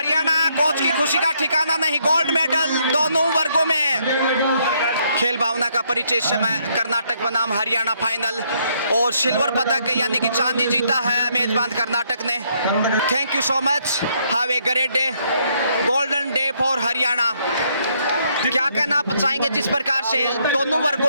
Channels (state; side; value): inverted; both; correlation -0.71